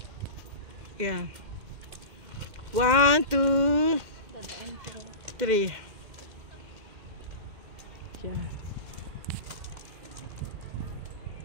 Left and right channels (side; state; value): left; late; 2.1 ms